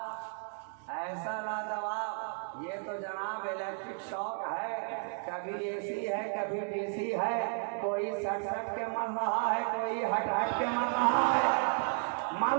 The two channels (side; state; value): left; silent; 56 dB below the other